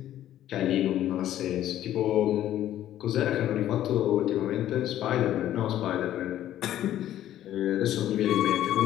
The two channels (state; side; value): quieter; right; 12.4 dB